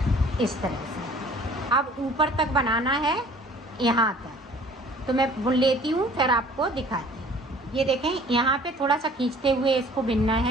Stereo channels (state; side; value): normal; both; correlation 0.51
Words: इस तरह से। अब ऊपर तक बनाना है, यहाँ तक। तो मैं बुन लेती हूँ, फिर आपको दिखाती हूँ। ये देखें, यहाँ पे थोड़ा सा खींचते हुए इसको बिनना